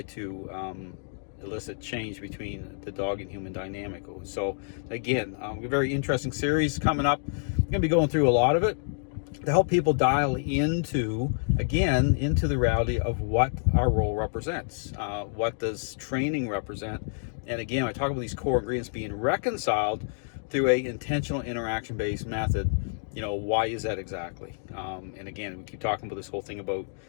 to elicit change between the dog and human dynamic. So again, a very interesting series coming up. I'm going to be going through a lot of it to help people dial into the reality of what our role represents. What does training represent? And again, I talk about these core ingredients being reconciled through a intentional interaction-based method. Why is that exactly? And again, we keep talking about this whole thing about,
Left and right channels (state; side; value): silent; right; digital silence